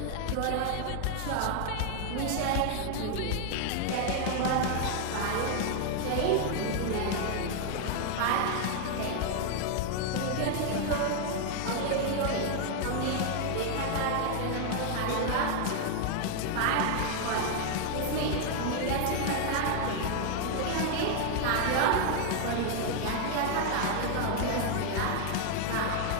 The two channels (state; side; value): different; both; correlation 0.00